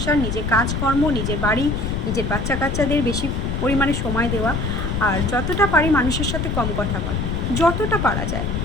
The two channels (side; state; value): left; noise; rumble, 2 dB below the sound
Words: নিজের কাজকর্ম, নিজের বাড়ি, নিজের বাচ্চা কাচ্চাদের বেশি পরিমাণে সময় দেওয়া, আর যতটা পারি মানুষের সাথে কম কথা বলা, যতটা পারা যায়।